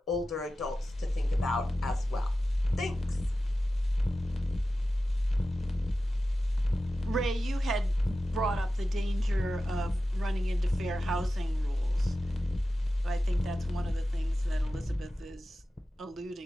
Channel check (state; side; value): normal; both; correlation 0.94